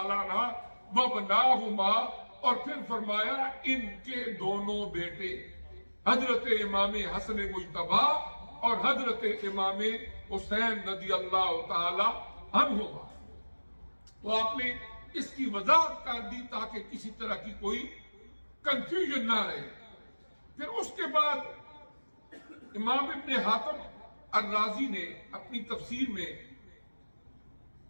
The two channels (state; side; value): inverted; both; correlation -1.00